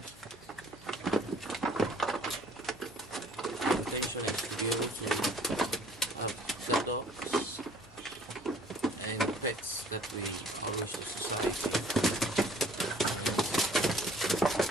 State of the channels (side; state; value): left; noise; hum, 24 dB below the sound